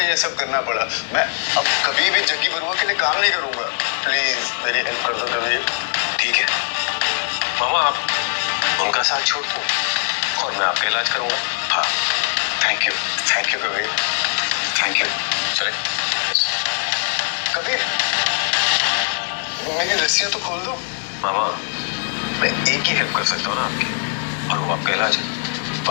ये सब करना पड़ा। मैं अब कभी भी जग्गी बरुआ के लिए काम नहीं करूंगा, प्लीज मेरी हेल्प कर दो कबीर। ठीक है मामा, आप उनका साथ छोड़ दो और मैं आपका इलाज करूंगा। हाँ, thank you Kabir. Thank you. चले। कबीर, मेरी रस्सियां तो खोल दो। मामा, मैं एक ही हेल्प कर सकता हूँ ना आपकी, और वो आपका इलाज है।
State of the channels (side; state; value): right; silent; digital silence